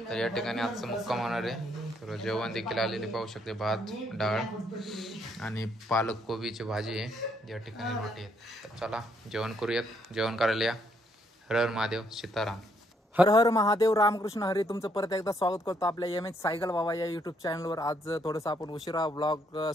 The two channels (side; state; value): both; normal; correlation 0.71